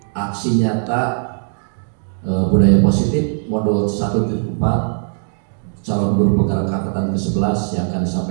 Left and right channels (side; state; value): left; silent; digital silence